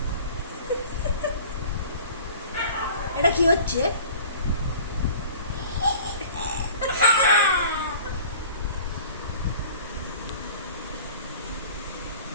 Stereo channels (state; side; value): inverted; both; correlation -0.44